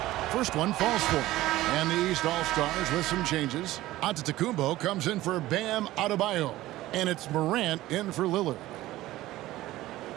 First one falls for him. And the East All-Stars with some changes. Antetokounmpo comes in for Bam Adebayo. And it's Morant in for Lillard.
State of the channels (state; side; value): quieter; left; 16.3 dB